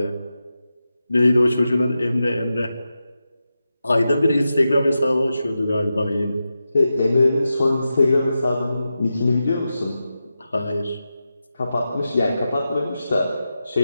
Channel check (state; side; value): inverted; both; correlation -0.91